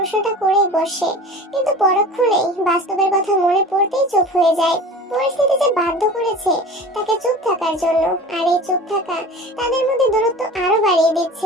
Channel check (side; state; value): both; normal; correlation 0.38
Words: করেই বসে, কিন্তু পরক্ষণেই বাস্তবের কথা মনে পড়তেই চুপ হয়ে যায়। পরিস্থিতি যে বাধ্য করেছে তাকে চুপ থাকার জন্য, আর এই চুপ থাকা তাদের মধ্যে দূরত্ব আরো বাড়িয়ে